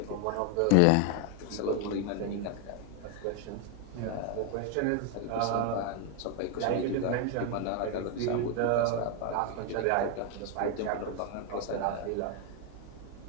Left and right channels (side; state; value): both; different; correlation 0.01